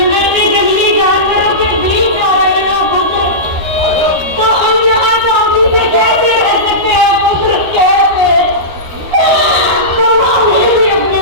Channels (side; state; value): left; late; 13 ms